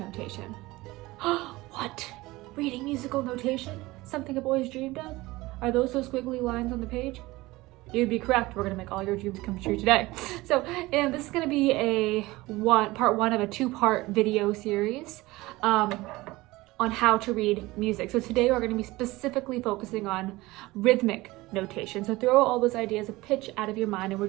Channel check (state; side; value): quieter; left; 20.1 dB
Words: What? Reading musical notation? Something I've always dreamed of? Are those squiggly lines on the page? You'd be correct. We're going to make all your dreams come true today. So, and this is going to be part one of a two-part video series on how to read music. So today we're going to be specifically focusing on rhythmic notation. So throw all those ideas of pitch out of your mind, and we're